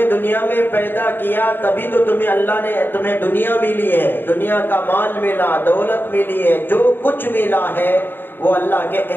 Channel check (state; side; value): late; right; 0.096 ms